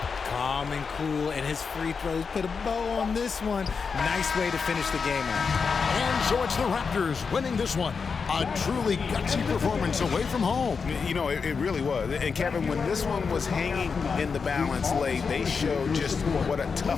Calm and cool, and his free throws put a bow on this one. Nice way to finish the game out. And so it's the Raptors winning this one. A truly gutsy performance away from home. You know, it really was. And Kevin, when this one was hanging in the balance late, they showed just what a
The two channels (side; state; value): right; quieter; 5.4 dB